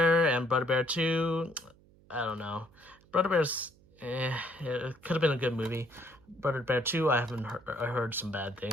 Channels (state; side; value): noise; right; hum, 28 dB below the sound